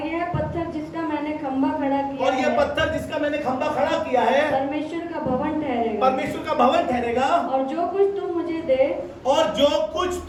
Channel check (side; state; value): both; identical; correlation 1.00